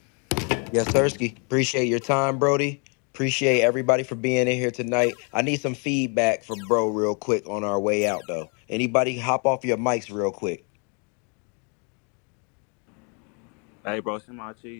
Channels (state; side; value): quieter; right; 36.9 dB